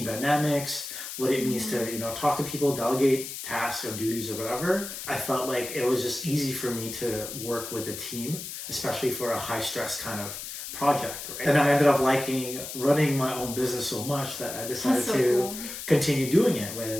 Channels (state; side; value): noise; left; hiss, 8 dB below the sound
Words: dynamics, what it means to, talk to people, delegate tasks or duties or whatever. I felt like it was just easy for me to work with a team, especially for a high stress kind of project. Right? And I ended up liking running my own business so much that I decided to continue doing it